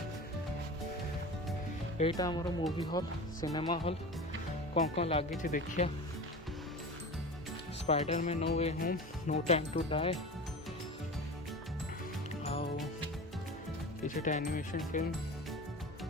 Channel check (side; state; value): both; normal; correlation 0.32